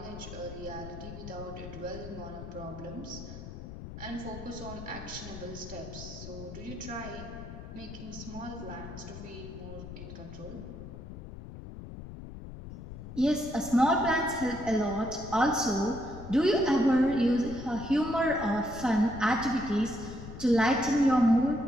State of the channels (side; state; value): left; noise; rumble, 11 dB below the sound